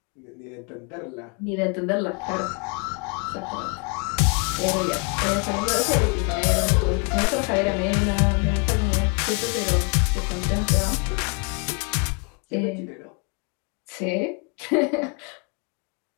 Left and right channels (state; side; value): quieter; right; 35.5 dB